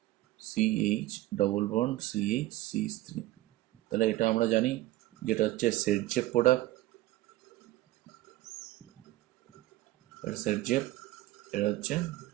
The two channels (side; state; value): left; quieter; 16.7 dB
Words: CH double bond CH3। তাহলে এটা আমরা জানি যেটা হচ্ছে সেটজেপ প্রোডাক্ট, এটা সেটজেপ, এটা হচ্ছে